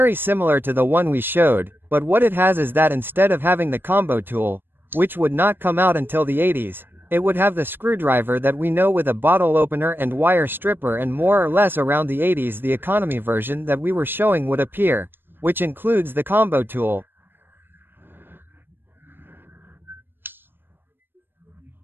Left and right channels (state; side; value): late; left; 0.098 ms